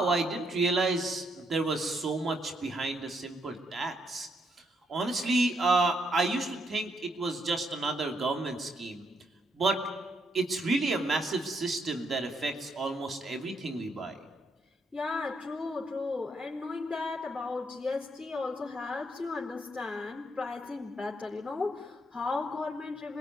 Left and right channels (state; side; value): normal; both; correlation 0.75